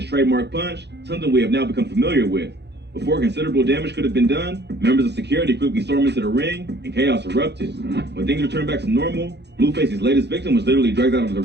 trademark punch, something we have now become familiar with. Before considerable damage could have been done, members of security quickly stormed into the ring and chaos erupted. When things returned back to normal, Blueface's latest victim was literally dragged out of the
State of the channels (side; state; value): left; late; 0.50 ms